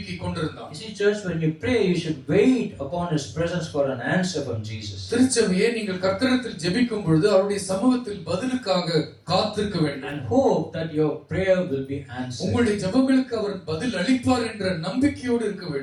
கொண்டிருந்தான். You see, church, when you pray, you should wait upon His presence for an answer from Jesus. திருச்சபையே, நீங்கள் கர்த்தரிடத்தில் ஜெபிக்கும் பொழுது அவருடைய சமூகத்தில் பதிலுக்காக காத்திருக்க வேண்டும். And hope that your prayer will be answered. உங்களுடைய ஜெபங்களுக்கு அவர் பதில் அளிப்பார் என்ற நம்பிக்கையோடு இருக்க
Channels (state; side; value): identical; both; correlation 1.00